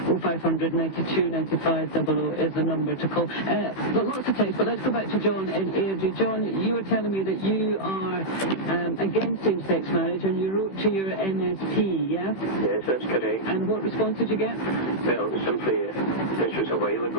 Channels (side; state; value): right; late; 16 ms